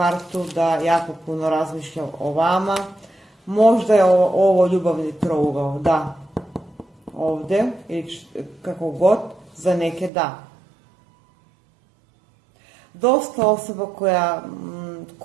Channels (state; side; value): drops out; left; at 10.1 s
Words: da jako puno razmišlja o vama. Možda je ovo ljubavni trougao, da, ovdje, ili kako god, za neke da. Dosta osoba